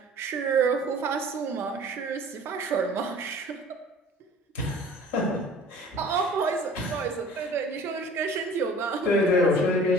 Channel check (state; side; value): normal; both; correlation 0.47